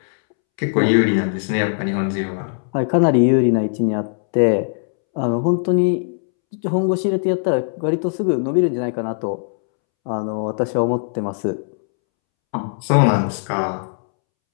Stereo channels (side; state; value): right; silent; 66 dB below the other